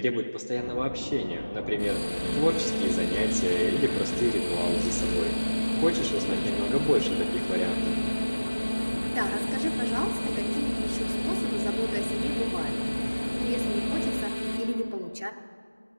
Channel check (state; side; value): inverted; both; correlation -1.00